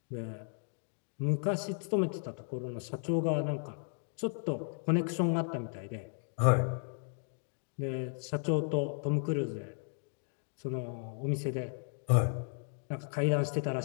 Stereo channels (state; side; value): silent; right; 55 dB below the other